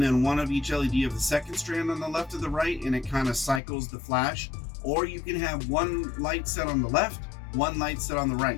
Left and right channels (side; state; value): right; drops out; at 3.6 s